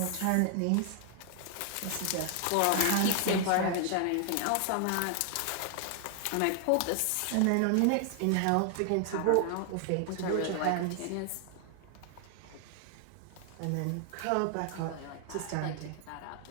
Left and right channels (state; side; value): different; both; correlation 0.00